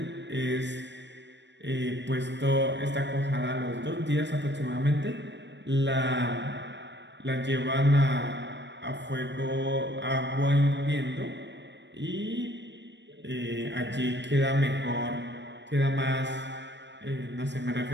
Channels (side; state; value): left; late; 0.52 ms